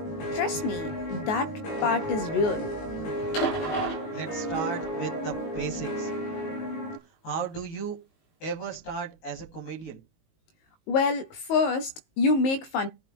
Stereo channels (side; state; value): right; late; 19 ms